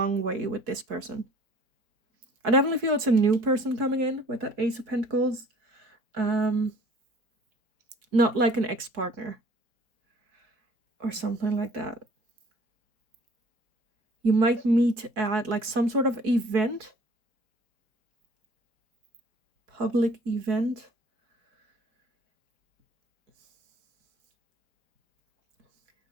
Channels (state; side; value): late; left; 4.6 ms